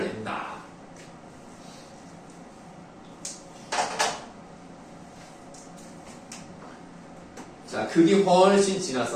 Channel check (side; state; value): both; identical; correlation 1.00